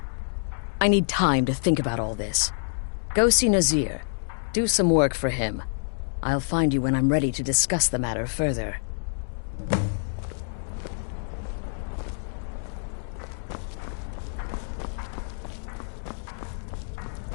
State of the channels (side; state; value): right; silent; 60 dB below the other